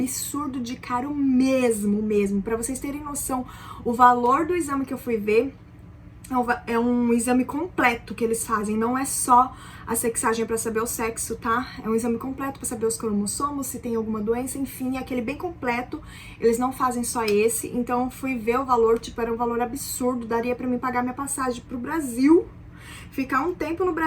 de caro mesmo. Pra vocês terem noção, o valor do exame que eu fui ver É um exame completo que eles fazem, não é só a sexagem para saber o sexo, tá? É um exame completo para saber os cromossomos, se tem alguma doença, enfim, é aquele bem completo. Eles não fazem só esse, então fui ver o valor, tipo, era um valor absurdo, daria para mim pagar minha passagem pro Brasil, ficar um tempo no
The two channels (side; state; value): both; identical; correlation 1.00